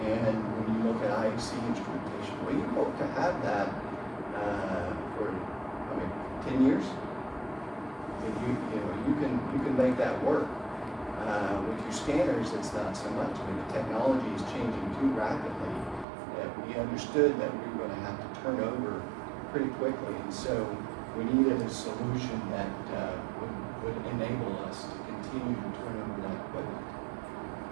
And when you look at IHC instrumentation, well, you hope to have that for 10 years. If you can make that work. With your scanners, it's not so much. The technology is changing too rapidly that we understood that we were going to have to turn over pretty quickly, and so we needed a solution that would enable us to continue to turn over that equipment.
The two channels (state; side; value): drops out; left; at 16.1 s